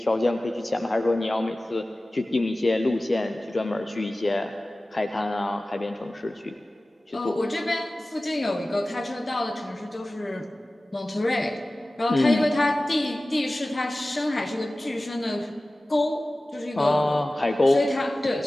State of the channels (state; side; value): normal; both; correlation 0.97